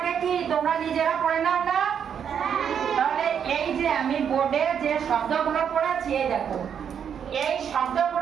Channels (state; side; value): quieter; left; 8.0 dB